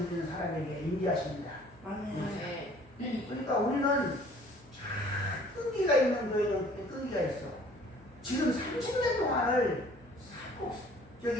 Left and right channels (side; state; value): left; noise; hum, 26 dB below the sound